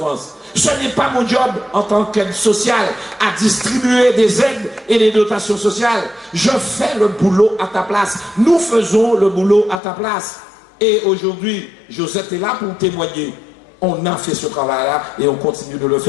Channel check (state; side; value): drops out; right; at 9.8 s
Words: Ce n'est pas mon job en tant qu'aide sociale à distribuer des aides et des dotations sociales. Je fais le boulot à ta place. Nous faisons le boulot à ta place. Et aujourd'hui, Josette est là pour témoigner. On a fait ce travail-là et on continue de le